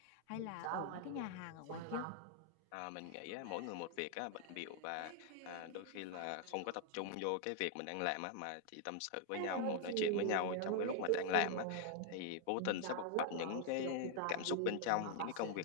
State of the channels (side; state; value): both; different; correlation 0.00